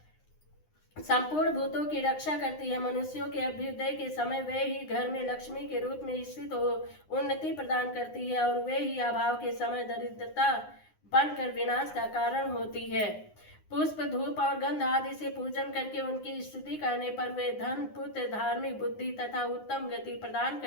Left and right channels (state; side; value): late; right; 9.7 ms